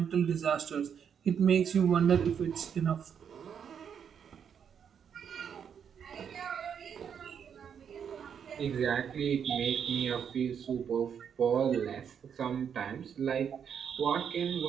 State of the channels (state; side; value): quieter; left; 7.7 dB